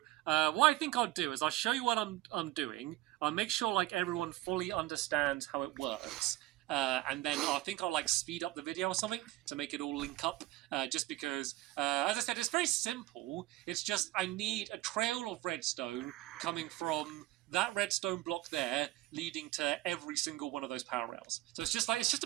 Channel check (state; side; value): quieter; left; 17.3 dB